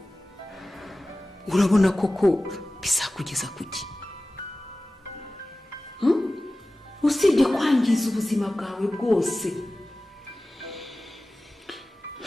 Urabona koko bizakugeza kuki? Usibye kwangiza ubuzima bwawe bwose.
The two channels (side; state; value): both; normal; correlation 0.96